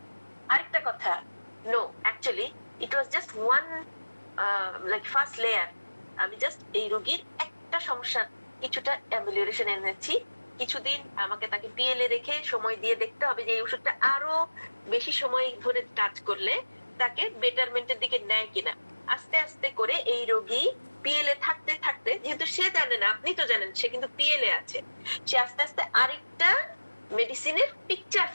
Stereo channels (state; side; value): inverted; both; correlation -1.00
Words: আরেকটা কথা, no, actually it was just one like first layer. আমি জাস্ট এই রোগীর একটা সমস্যা কিছুটা অ্যামিলিয়েশন এনেছি, কিছুদিন আমাকে তাকে পিএলএ রেখে সময় দিয়ে দেখতে হবে যে এই ওষুধটা আরো বেশি সময় ধরে কাজ করলে তাকে বেটারমেন্টের দিকে নেয় কিনা। আস্তে আস্তে করে এই রোগী পিএলএ থাকতে থাকতে, যেহেতু সে জানে না, আপনি তো জানেন সে কিন্তু পিএলএ আছে, সে আস্তে আস্তে আরেকটা মেডিসিনের পিকচার